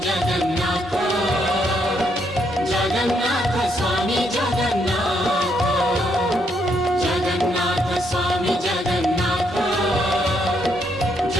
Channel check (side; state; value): both; normal; correlation 0.75